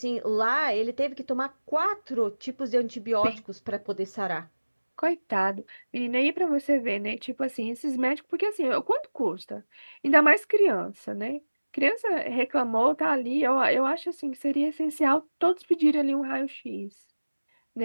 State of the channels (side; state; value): both; inverted; correlation -1.00